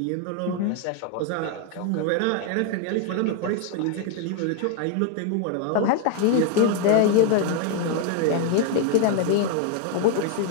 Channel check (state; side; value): different; both; correlation 0.01